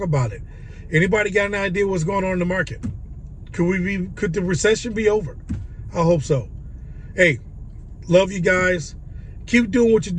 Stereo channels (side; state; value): both; identical; correlation 1.00